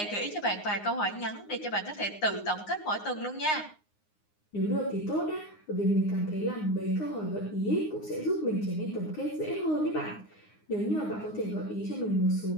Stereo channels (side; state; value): right; late; 9.7 ms